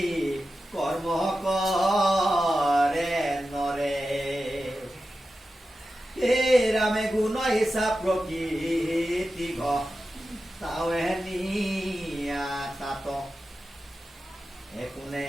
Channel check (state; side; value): normal; both; correlation 0.92